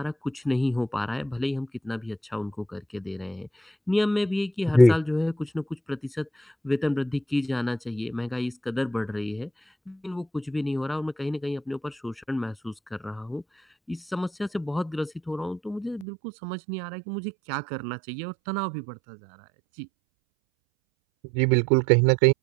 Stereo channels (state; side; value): drops out; left; at 16.1 s